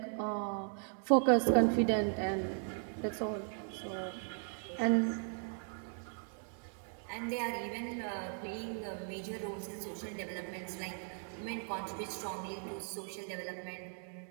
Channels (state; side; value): silent; left; 53 dB below the other